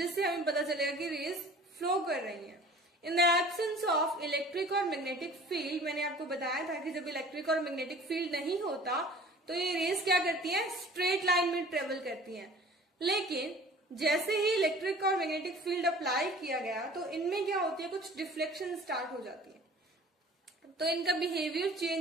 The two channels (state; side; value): normal; both; correlation 0.46